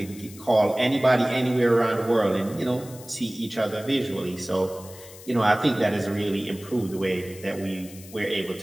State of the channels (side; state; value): left; noise; hiss, 18 dB below the sound